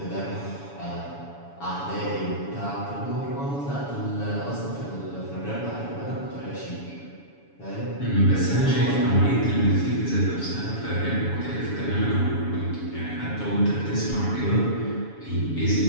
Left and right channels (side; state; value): right; late; 7.1 ms